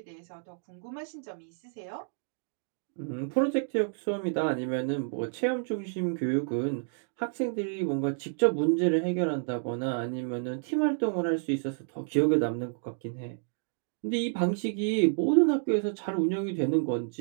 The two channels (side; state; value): left; silent; digital silence